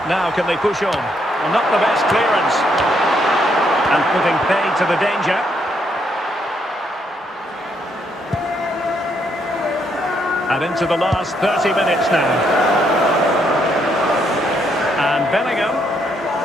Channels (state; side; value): normal; both; correlation 0.74